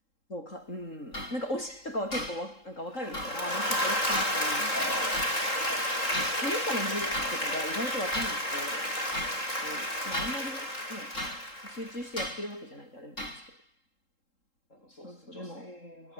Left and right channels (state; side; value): late; right; 3.7 ms